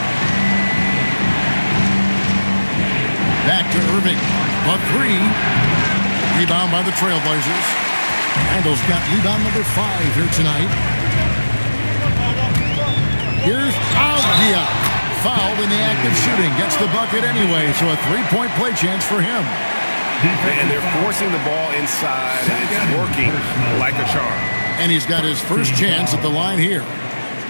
Back to Irving. But 3. Rebound by the Trailblazers. Randle's got rebound number 5 here tonight. Here's Avdia. Fouled in the act of shooting. Gets the bucket anyway, so a 3-point play chance for him. And they're forcing the ball inside, and it's working like a charm. And he's got his first chance at the line here.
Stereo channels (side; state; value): both; inverted; correlation -1.00